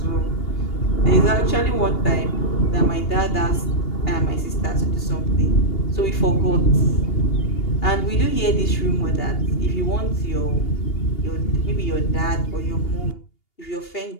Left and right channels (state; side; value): late; right; 2.8 ms